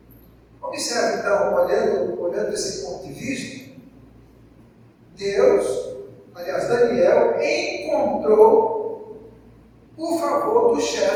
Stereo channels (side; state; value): both; identical; correlation 1.00